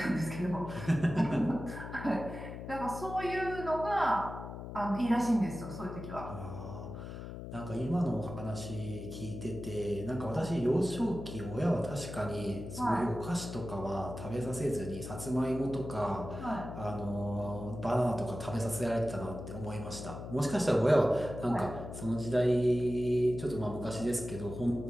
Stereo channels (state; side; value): noise; left; hum, 9 dB below the sound